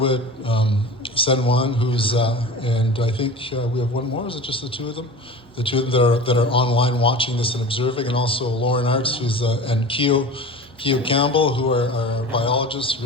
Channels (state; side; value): normal; both; correlation 0.35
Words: Sen Wang, and I think we have one more. Is it just the two of them? the two of them that are online watching this and observing, and also Lauren Arts, who's and Keo Campbell, who are biologists,